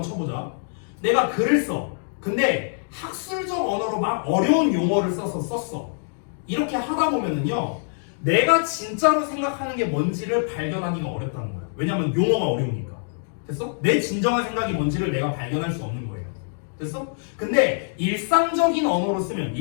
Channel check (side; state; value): right; silent; digital silence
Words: 쳐보자. 내가 글을 써. 근데 학술적 언어로 막 어려운 용어를 썼어. 이렇게 하다 보면은요. 내가 진짜로 생각하는 게 뭔지를 발견하기가 어렵다는 거야. 왜냐면 용어가 어려우니까. 됐어? 내 진정한 생각이 뭔지를 내가 발견할 수 없는 거예요. 됐어? 근데 일상적인 언어로 쓰면